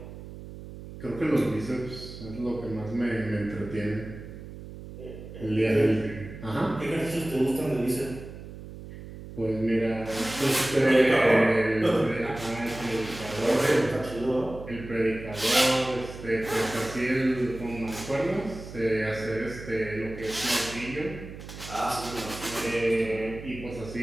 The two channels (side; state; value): right; noise; hum, 13 dB below the sound